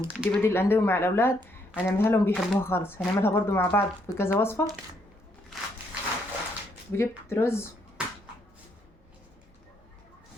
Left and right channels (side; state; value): both; normal; correlation 0.72